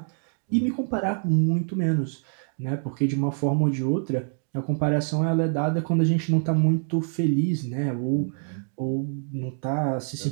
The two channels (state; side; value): silent; left; 61 dB below the other